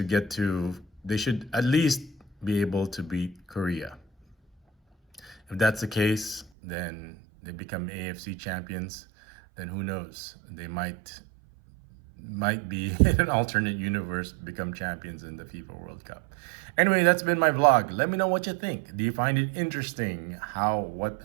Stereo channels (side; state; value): left; drops out; at 6.5 s